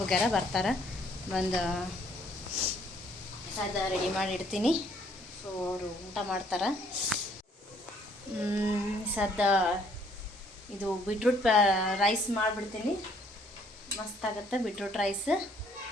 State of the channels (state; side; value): normal; both; correlation 0.64